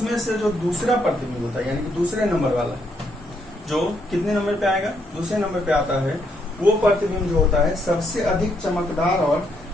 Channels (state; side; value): normal; both; correlation 0.75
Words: से जो दूसरा प्रतिबिंब होता है, यानी कि दूसरे नंबर वाला, जो कितने नंबर पे आएगा, दूसरे नंबर पे आता है, वो प्रतिबिंब जो होता है सबसे अधिक चमकदार और